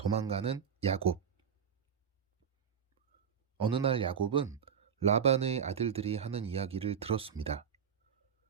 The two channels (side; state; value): left; quieter; 7.6 dB